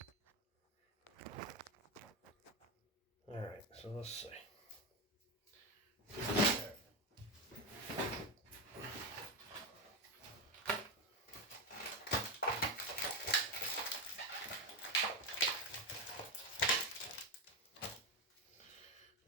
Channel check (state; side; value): normal; both; correlation 0.13